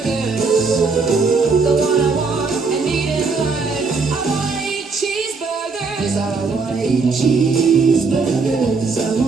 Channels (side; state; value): left; quieter; 4.5 dB